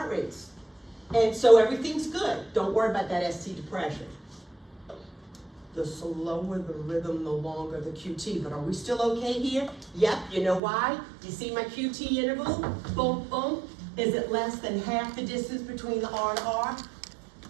rates. And so everything's good. Don't worry about that ST depression. The slower the rhythm, the longer the QT. But are we still okay here? Yep, you know why? You see my QT interval? Boom, boom. Is it less than half the distance between the R and R?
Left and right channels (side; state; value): left; drops out; at 10.6 s